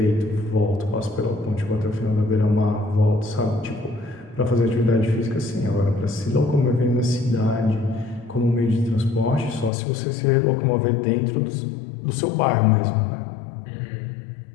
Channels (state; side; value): drops out; right; at 9.7 s